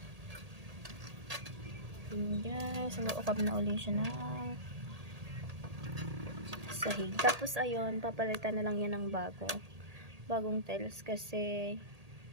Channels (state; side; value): late; left; 1.8 ms